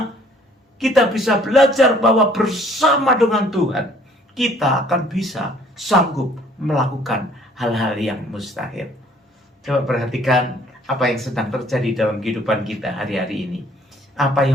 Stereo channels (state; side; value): normal; both; correlation 0.59